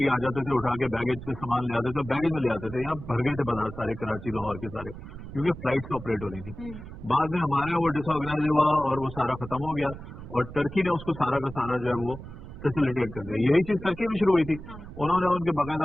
آ جاتے تھے، اٹھا کے بیگیج سے سامان لے آتے تھے، بیگیج میں لے آتے تھے. یہاں بھر گئے تھے بازار سارے کراچی لاہور کے سارے، کیونکہ فلائٹس آپریٹ ہو رہی تھی. بعد میں ہمارے وہ ڈس آرگنائز ہوا اور وہ سارا ختم ہو گیا اور ٹرکی نے اس کو سارا کا سارا جو ہے وہ فیسیلیٹیٹ کر دیا. یہی چیز ترکی میں شروع ہوئی تھی. انہوں نے ان کے باقاعدہ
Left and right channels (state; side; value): noise; right; rumble, 13 dB below the sound